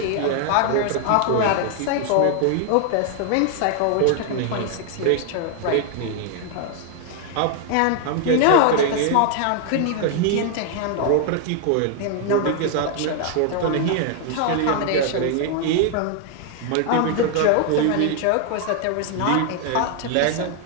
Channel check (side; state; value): both; different; correlation 0.00